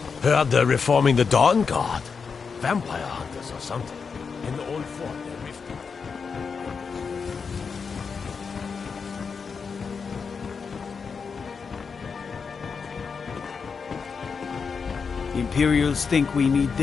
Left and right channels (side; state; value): right; quieter; 5.6 dB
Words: Heard they're reforming the Dawn Guard. Vampire hunters or something. In the old fort, they're rifting. Imperials think we need